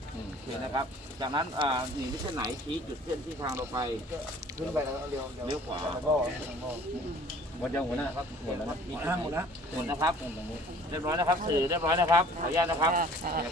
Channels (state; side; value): normal; both; correlation 0.52